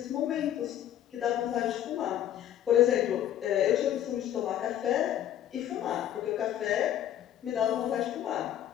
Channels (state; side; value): quieter; right; 11.3 dB